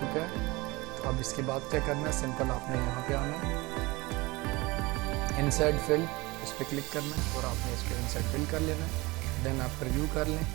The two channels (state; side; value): quieter; left; 22.9 dB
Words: है। तो अब इसके बाद क्या करना है, सिंपल आपने यहाँ पे आना है, इनसाइड फिल, इस पर क्लिक करना है और आपने इसको इनसाइड फिल कर लेना है। देन आप प्रीव्यू कर लें।